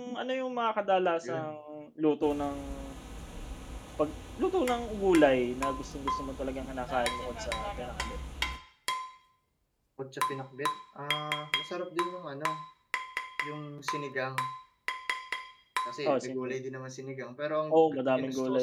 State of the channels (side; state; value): both; identical; correlation 1.00